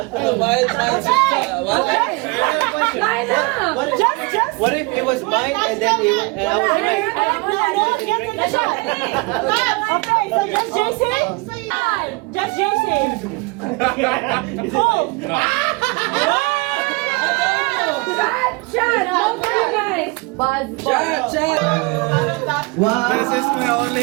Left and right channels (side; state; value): left; quieter; 27.0 dB